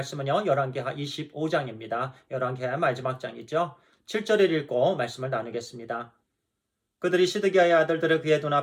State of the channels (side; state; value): both; identical; correlation 1.00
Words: 열왕기하 25장입니다. 열왕기하의 마지막 장이죠. 7절을 읽고 말씀을 나누겠습니다. 그들이 시드기야의 아들들을 그의